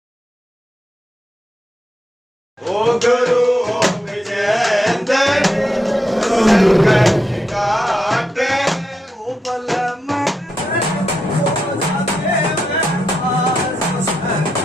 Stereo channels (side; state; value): both; normal; correlation 0.84